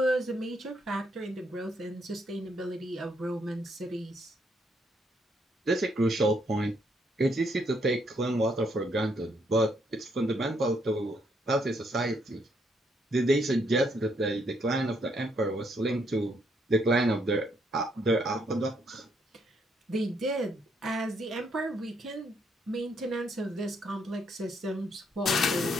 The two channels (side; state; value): both; normal; correlation 0.73